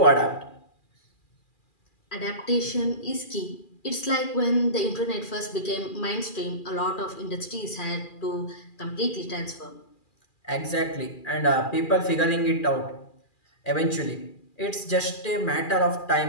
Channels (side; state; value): right; late; 2.4 ms